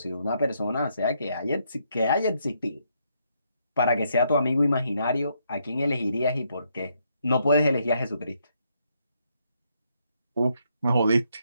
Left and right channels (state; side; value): inverted; both; correlation -0.75